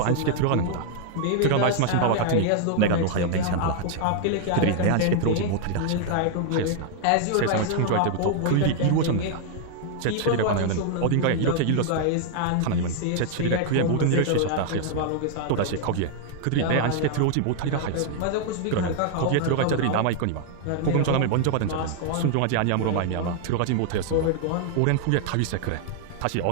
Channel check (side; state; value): both; different; correlation 0.00